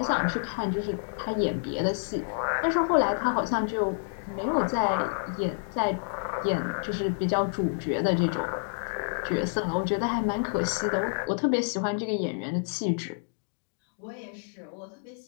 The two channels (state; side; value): silent; right; digital silence